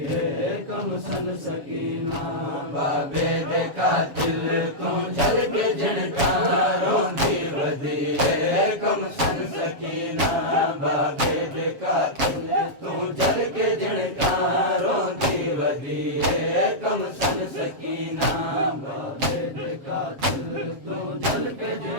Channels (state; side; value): late; left; 7.5 ms